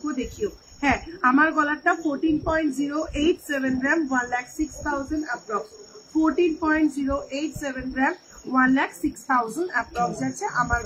দেখিও। হ্যাঁ, আমার গলাটা 14.087 গ্রাম, 1,06,000 approx, 14.087 গ্রাম, 1,06,000 approx যাচ্ছে আমার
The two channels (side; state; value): both; identical; correlation 1.00